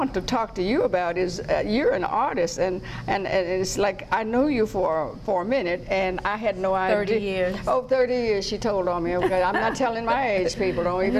to talk to you about is you're an artist, and it's like I know you for a minute, and I had no idea. 30 years. Oh, 30 years, she told on me. Okay, I'm not telling my age, people. Don't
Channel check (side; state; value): both; identical; correlation 1.00